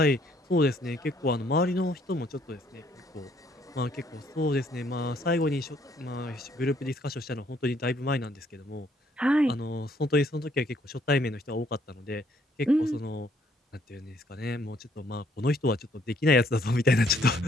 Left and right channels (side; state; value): both; normal; correlation 0.66